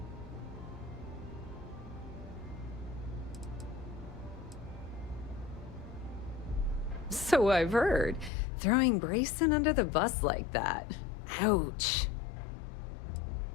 So I've heard. Throwing Brayson under the bus like that. Ouch.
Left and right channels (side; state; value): right; drops out; at 8.3 s